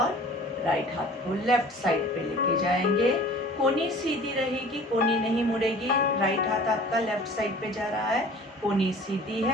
राइट हाथ को लेफ्ट साइड पे लेके जाएंगे। कोहनी सीधी रहेगी, कोहनी नहीं मुड़ेगी। राइट हाथ आपका लेफ्ट साइड पे जा रहा है, कोहनी सीधी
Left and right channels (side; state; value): both; normal; correlation 0.46